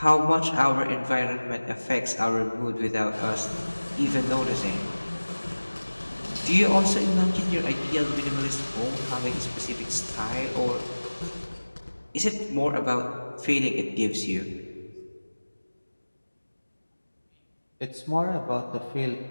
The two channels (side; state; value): both; inverted; correlation -1.00